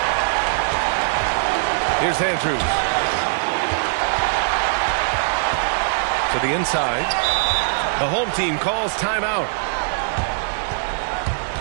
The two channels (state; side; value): silent; left; 65 dB below the other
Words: Here's Andrews. To the inside. The home team calls timeout.